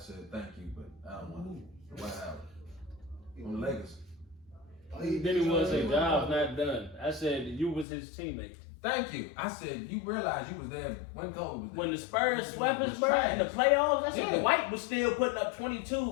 thank you, but I don't want it. The White House. On the Lakers. Then he was his job's not done. I said, you was his teammate. Thank you. I said, you realize you was there when Kobe was there. When the Spurs swept us, bro, in the playoffs, I said, Yeah. Dwight was still putting up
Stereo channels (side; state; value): right; drops out; at 7.9 s